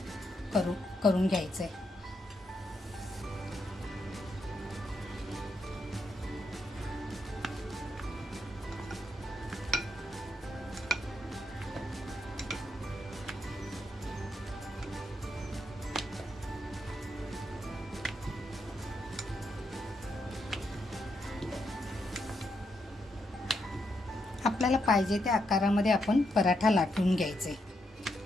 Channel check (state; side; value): normal; both; correlation 0.80